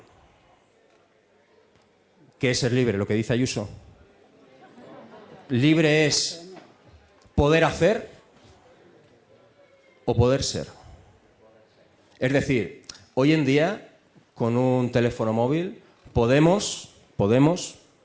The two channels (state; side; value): identical; both; correlation 1.00